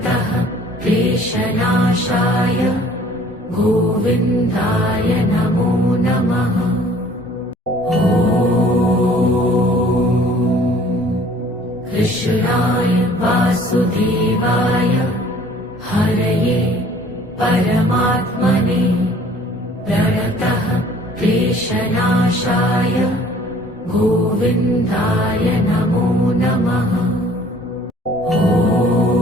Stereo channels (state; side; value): normal; both; correlation 0.54